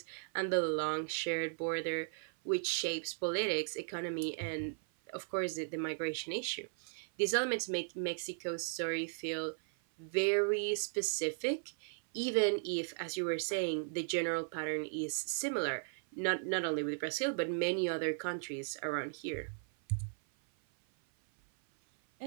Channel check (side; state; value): left; silent; 53 dB below the other